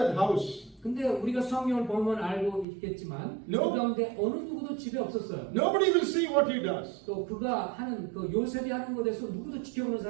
house. 근데 우리가 성경을 보면 알고 있겠지만 No. 그 가운데 어느 누구도 집에 없었어요. Nobody will see what he does. 또 그가 하는 그 요셉이 하는 것에서 누구도 지켜보는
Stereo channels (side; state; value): left; drops out; at 2.7 s